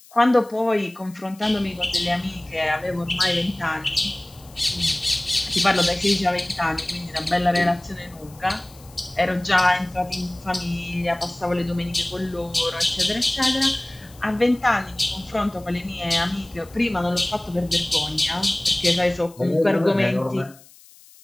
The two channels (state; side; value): noise; left; hiss, 24 dB below the sound